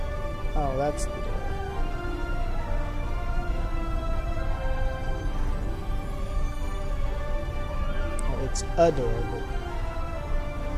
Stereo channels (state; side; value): identical; both; correlation 1.00